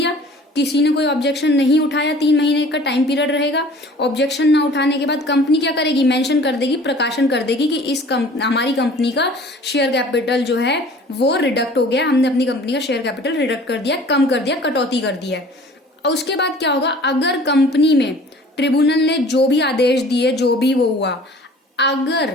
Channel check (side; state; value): both; normal; correlation 0.48